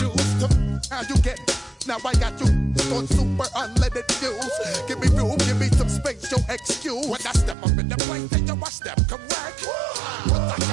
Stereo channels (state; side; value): drops out; left; at 7.6 s